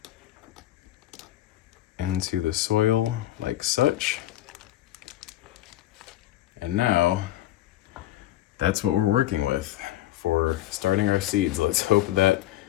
into the soil like such. And now that's what we're working with for starting our seeds. Let's hope that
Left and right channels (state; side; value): quieter; right; 14.7 dB